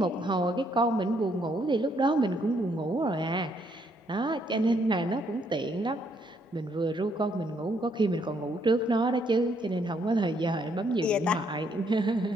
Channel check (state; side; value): normal; both; correlation 0.71